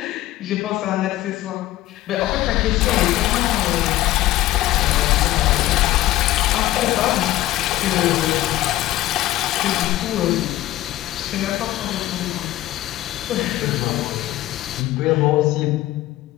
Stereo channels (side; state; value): right; quieter; 15.6 dB